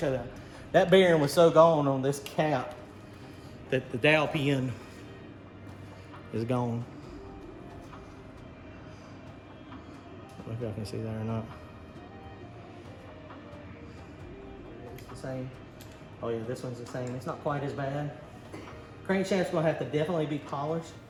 you that. That bearing was so gone on this cap that the dowel pin is gone. I don't know if y'all can see that or not. It's the same. Oh yeah, this one's the same. It's not quite as bad. Crankshaft's gonna have to definitely be polished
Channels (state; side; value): identical; both; correlation 1.00